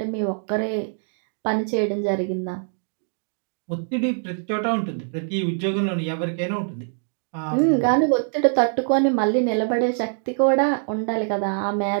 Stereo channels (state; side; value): silent; left; digital silence